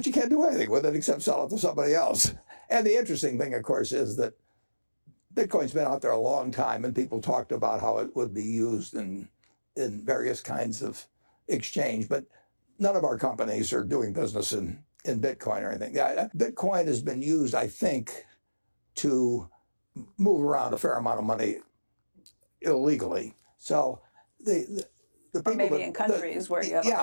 you can't do anything with it except sell it to somebody else. And the interesting thing, of course, is that Bitcoin's been out there a long time, and people talked about how it would be used in various kinds of exchange, but none of our companies are doing business in Bitcoin or anything. Bitcoin has been used, I think, to move around a fair amount of money illegally. So the people, or maybe in countries where you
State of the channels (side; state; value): both; inverted; correlation -1.00